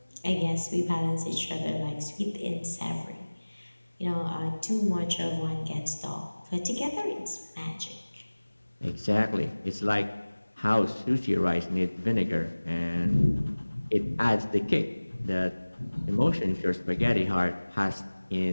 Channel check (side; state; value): both; inverted; correlation -1.00